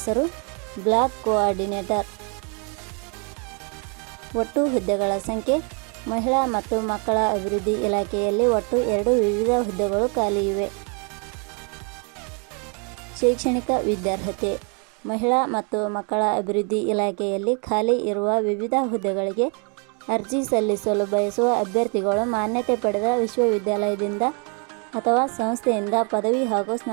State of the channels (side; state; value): left; quieter; 36.9 dB